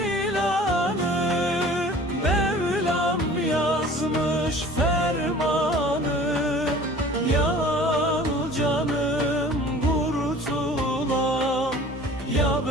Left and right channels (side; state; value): both; normal; correlation 0.46